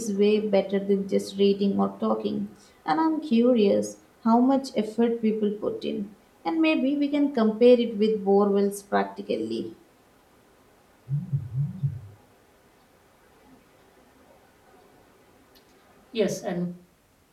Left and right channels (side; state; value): both; identical; correlation 1.00